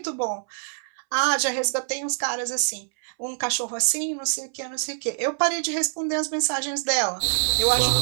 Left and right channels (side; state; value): left; silent; 62 dB below the other